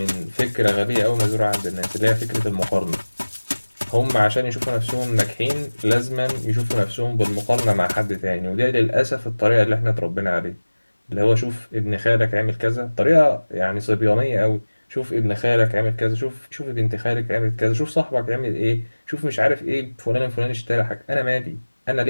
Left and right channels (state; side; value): inverted; both; correlation -1.00